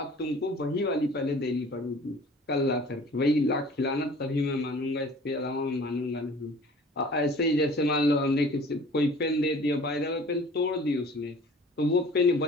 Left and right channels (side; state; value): both; normal; correlation 0.47